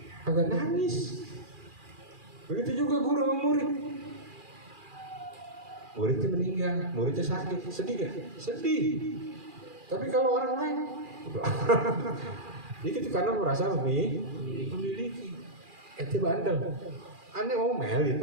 Agak nangis. Begitu juga guru sama murid. Muridnya meninggal, muridnya sakit, sedih gak? Sedih. Tapi kalau orang lain, itu karena merasa memiliki. Ente bandel, aneh ngomel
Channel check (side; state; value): left; late; 2.4 ms